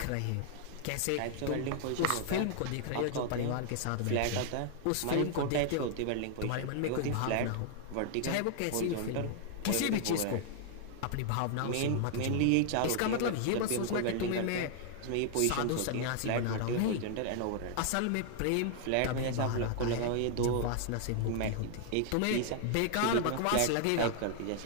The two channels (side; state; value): both; different; correlation 0.00